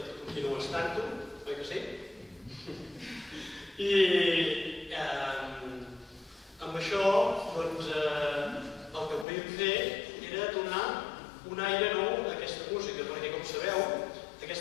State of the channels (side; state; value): right; drops out; at 9.2 s